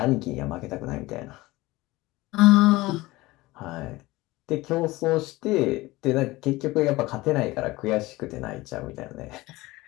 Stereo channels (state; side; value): quieter; right; 19.8 dB